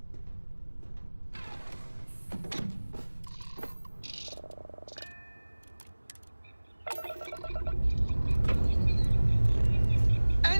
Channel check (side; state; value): both; inverted; correlation -1.00